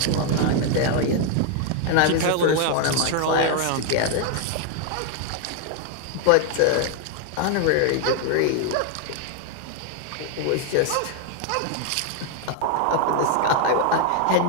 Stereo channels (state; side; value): different; both; correlation 0.01